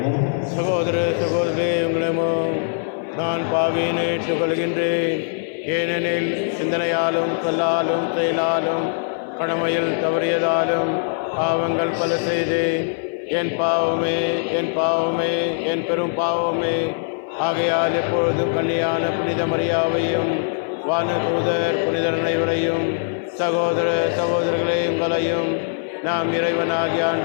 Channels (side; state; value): right; silent; 59 dB below the other